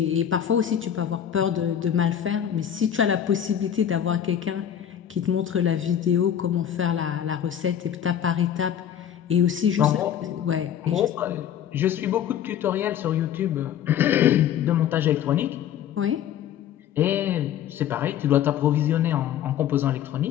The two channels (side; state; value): right; quieter; 9.8 dB